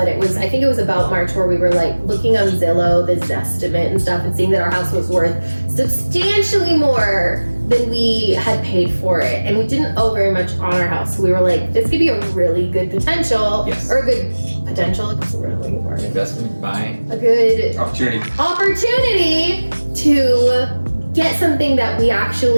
I think it was about March where we were like looking on Zillow, the Zestimate and stuff, and seeing that our house was worth substantially more than we had paid for it. And we didn't owe very much on our house. So we were like, this could be a really good potential, Yes. or a good potential, that's what we're looking for. Investment, buy, A good opportunity to get something that we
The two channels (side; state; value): both; inverted; correlation -1.00